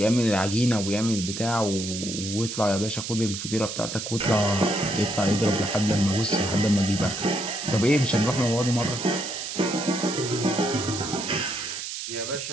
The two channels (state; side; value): noise; right; hiss, 6 dB below the sound